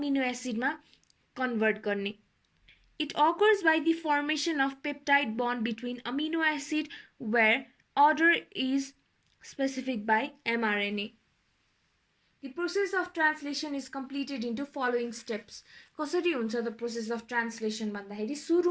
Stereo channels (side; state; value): both; identical; correlation 1.00